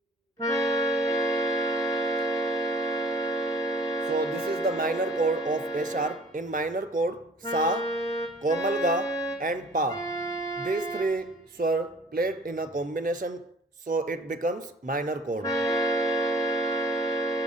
So this is the minor chord of A sharp. In minor chord, Sa, Komal Ga and Pa. These three swar played in a combination, so it becomes minor chord.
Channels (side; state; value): both; normal; correlation 0.51